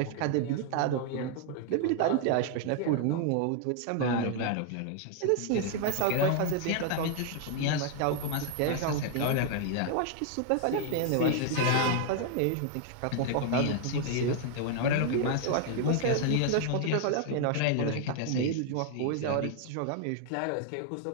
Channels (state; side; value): different; both; correlation 0.00